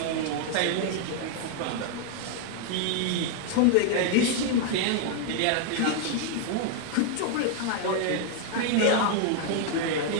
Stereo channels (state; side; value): different; both; correlation 0.00